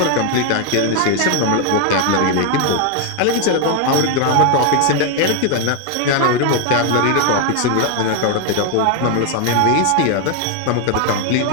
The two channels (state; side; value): different; both; correlation 0.01